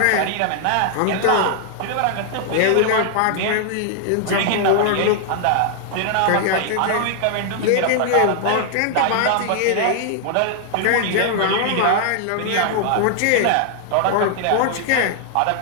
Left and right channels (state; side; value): different; both; correlation -0.01